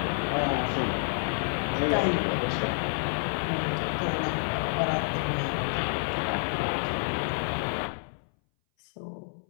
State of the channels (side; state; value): right; silent; 59 dB below the other